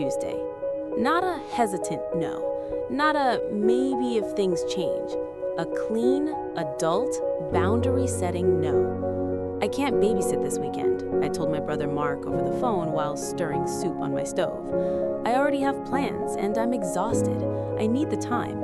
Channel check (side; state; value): both; identical; correlation 1.00